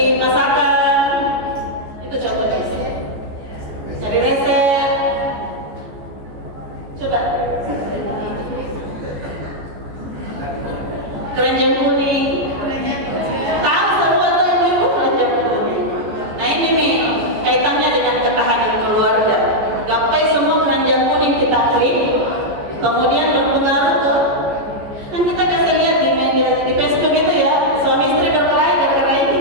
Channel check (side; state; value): left; late; 14 ms